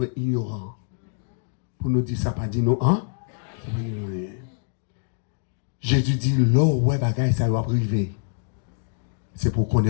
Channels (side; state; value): right; silent; 62 dB below the other